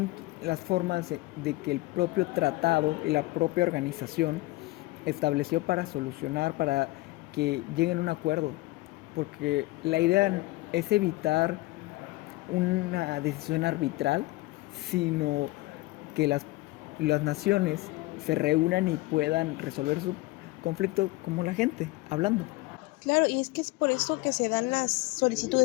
las formas de que el propio tratado y la propia organización estableció para solucionar, para que lleguen a un acuerdo, porque la idea es evitar una decisión arbitral, sino que las naciones se reúnan y puedan resolver su conflicto como la gente, hablando. Claro, y es que es por eso que se dan las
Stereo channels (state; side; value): quieter; right; 20.1 dB